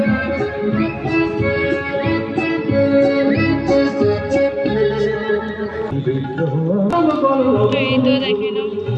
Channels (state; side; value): identical; both; correlation 1.00